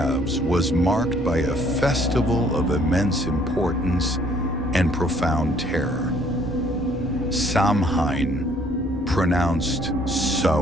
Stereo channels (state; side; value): normal; both; correlation 0.62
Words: was marked by a festival of immense importance and profound terror. Samhain, pronounced